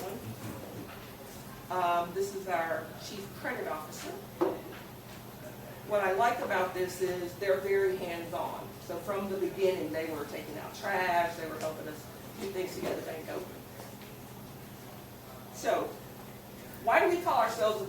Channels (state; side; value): identical; both; correlation 1.00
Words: one. This is our Chief Credit Officer. What I like about this is they're very hands-on. So from the beginning, they were taking out trash, they were helping us do things to get the bank open. So, why do we call ourselves a